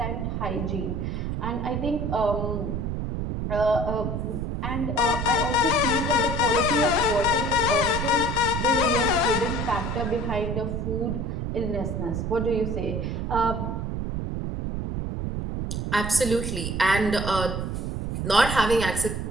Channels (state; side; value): noise; right; rumble, 2 dB below the sound